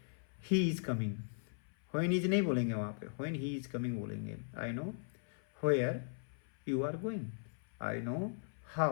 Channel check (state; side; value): silent; right; 52 dB below the other